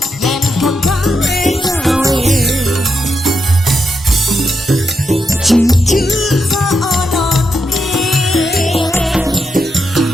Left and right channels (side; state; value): both; normal; correlation 0.83